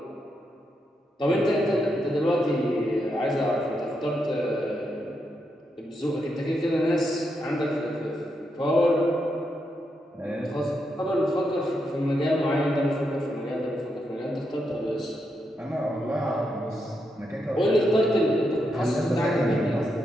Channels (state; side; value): normal; both; correlation 0.82